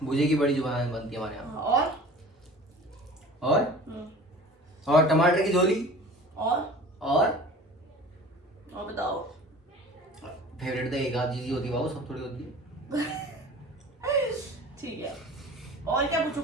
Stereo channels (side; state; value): both; normal; correlation 0.42